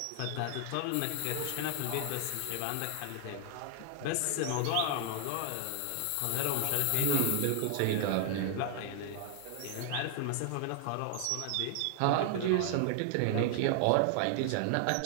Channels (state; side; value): different; both; correlation 0.00